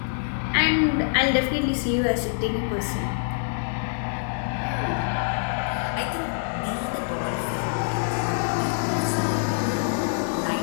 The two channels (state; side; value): silent; right; digital silence